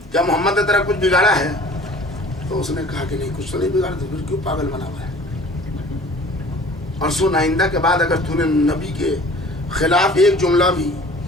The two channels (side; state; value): both; normal; correlation 0.48